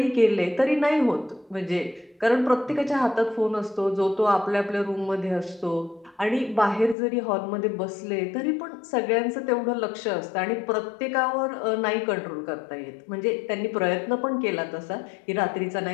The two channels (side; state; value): right; drops out; at 7.0 s